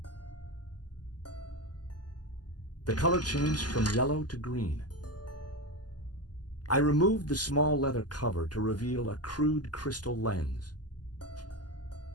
The color changed from yellow to green. I removed the small leather cover to reveal a crude crystal lens.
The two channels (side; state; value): right; late; 0.70 ms